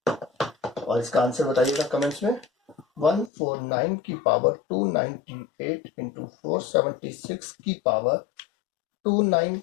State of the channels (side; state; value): right; drops out; at 3.3 s